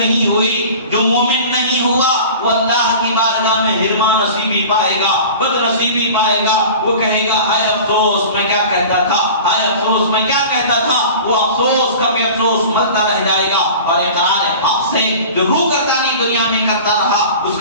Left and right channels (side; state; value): both; inverted; correlation -0.38